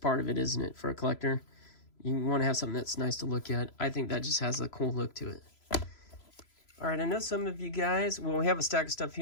of it, isn't it? For a collector, you want to have something that's nice to look at. I think that just has a cool look to it. All right, I know some of you guys, well, we have a stack of stuff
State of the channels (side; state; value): right; late; 3.0 ms